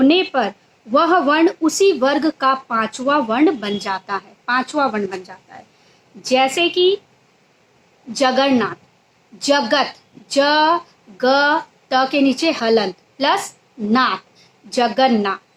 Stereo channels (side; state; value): both; identical; correlation 1.00